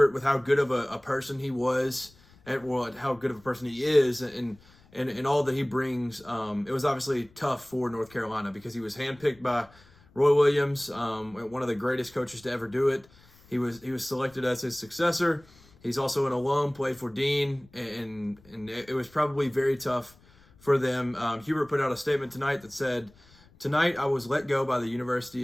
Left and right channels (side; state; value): left; noise; rumble, 27 dB below the sound